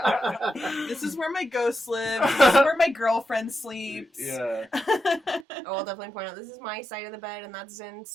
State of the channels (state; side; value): drops out; left; at 5.5 s